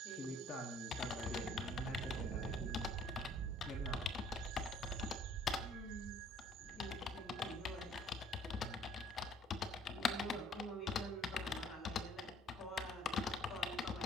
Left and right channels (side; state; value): both; normal; correlation 0.57